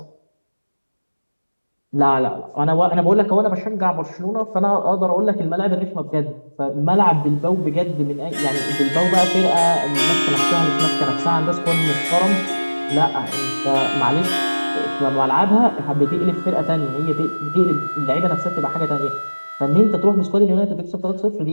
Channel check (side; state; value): both; inverted; correlation -1.00